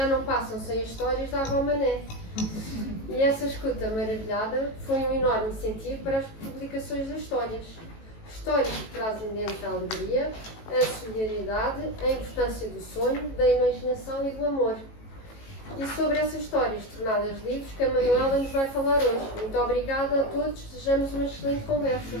não passam sem as histórias da avó Mané. E essa escuta maravilhada foi um enorme incentivo para as publicações das histórias. Histórias que trazem dentro a alegria, a solidariedade, a importância do sonho, da imaginação e do amor. E sobre essas histórias tornadas livros que a Manuela nos vai falar hoje. Muito obrigada a todos, desejamos uma excelente conversa.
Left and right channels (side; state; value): right; late; 18 ms